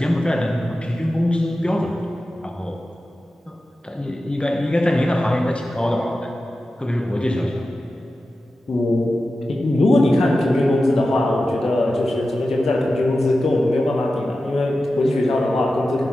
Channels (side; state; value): both; normal; correlation 0.93